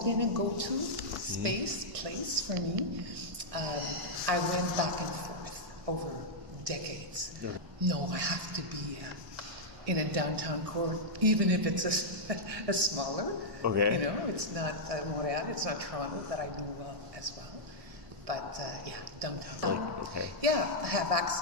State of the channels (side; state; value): left; late; 1.1 ms